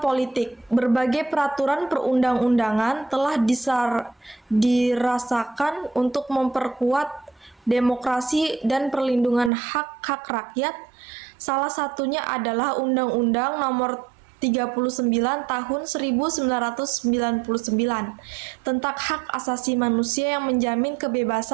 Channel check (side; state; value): left; drops out; at 9.5 s